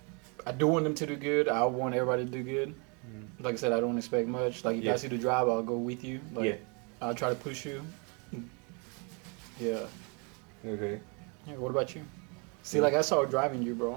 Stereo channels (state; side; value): quieter; left; 33.8 dB